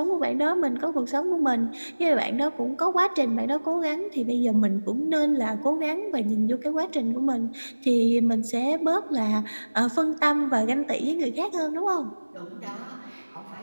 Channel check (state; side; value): inverted; both; correlation -1.00